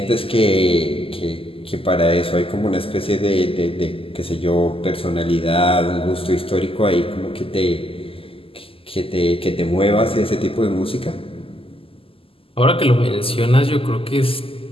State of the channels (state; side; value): late; right; 0.26 ms